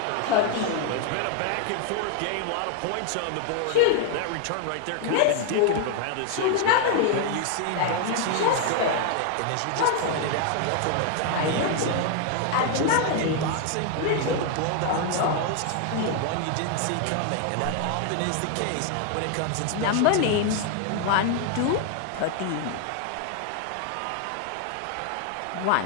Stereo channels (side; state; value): both; different; correlation 0.00